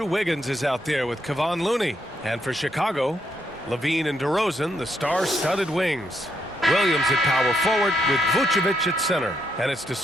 Wiggins is out there with Kevon Looney. And for Chicago, Levine and DeRozan, the star-studded wings. Williams at power forward with Vucevic at center. And it's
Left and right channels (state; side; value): normal; both; correlation 0.77